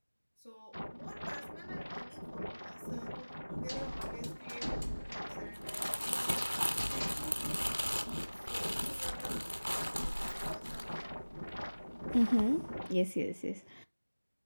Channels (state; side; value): inverted; both; correlation -1.00